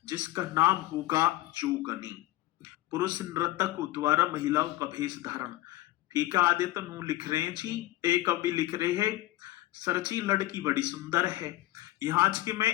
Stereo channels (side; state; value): right; quieter; 16.8 dB